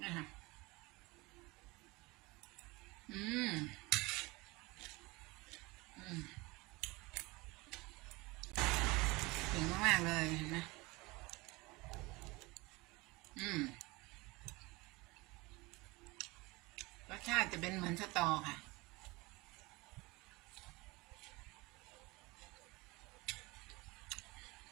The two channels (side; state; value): left; quieter; 23.5 dB